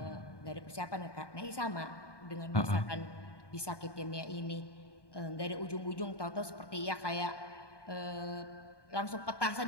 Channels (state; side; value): late; right; 1.2 ms